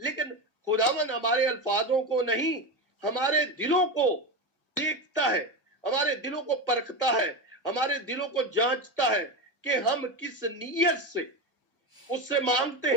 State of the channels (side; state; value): both; normal; correlation 0.18